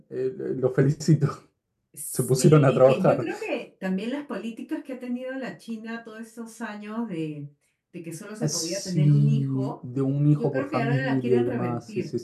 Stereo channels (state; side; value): identical; both; correlation 1.00